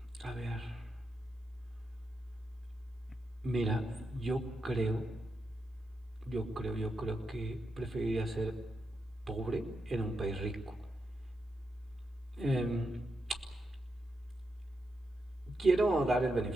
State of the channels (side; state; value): both; normal; correlation 0.85